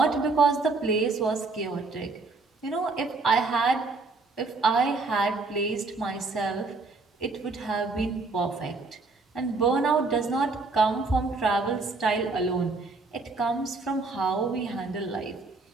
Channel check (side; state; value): left; quieter; 3.8 dB